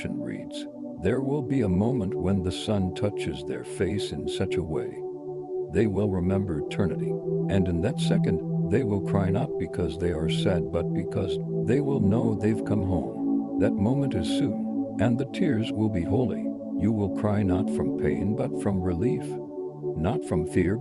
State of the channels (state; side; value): identical; both; correlation 1.00